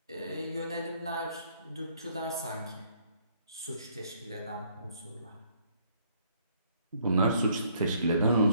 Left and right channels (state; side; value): inverted; both; correlation -0.66